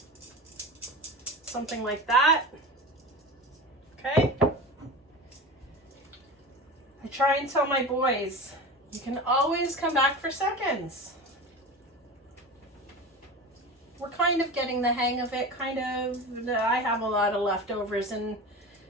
Something like that. Okay? I try and tell my boys, you can always come back for seconds. We're kind of getting the hang of it, kind of. I have a lot of leftovers in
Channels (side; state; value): both; normal; correlation 0.30